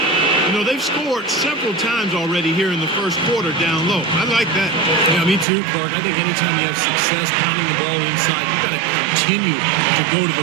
You know, they've scored several times already here in the first quarter down low. I like that. Yeah, me too, Clark. I think anytime you have success pounding the ball inside, you've got to continue to go to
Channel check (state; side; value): drops out; left; at 5.5 s